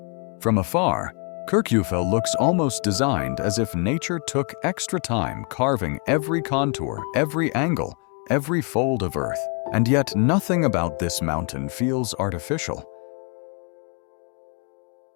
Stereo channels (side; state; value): right; quieter; 36.9 dB